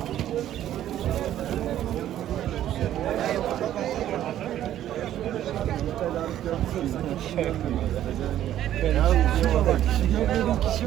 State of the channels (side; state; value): left; quieter; 12.0 dB